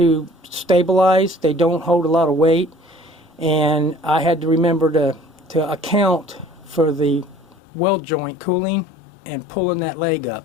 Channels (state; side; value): drops out; right; at 7.6 s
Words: stabilize. They don't hold a lot of weight, and I had to remember to account for the weld joint cooling and pulling that leg